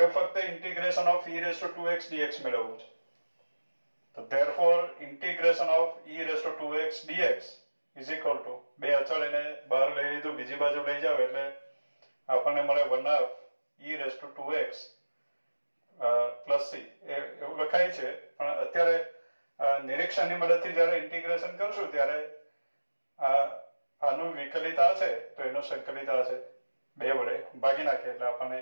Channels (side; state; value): both; inverted; correlation -1.00